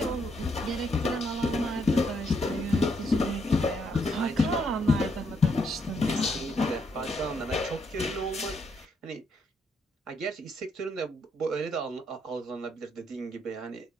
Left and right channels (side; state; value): both; normal; correlation 0.75